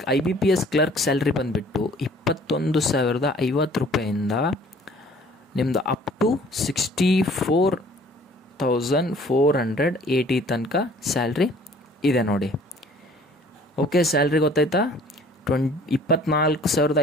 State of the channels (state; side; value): normal; both; correlation 0.54